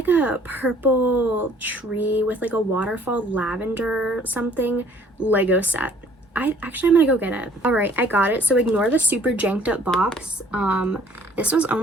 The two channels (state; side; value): normal; both; correlation 0.58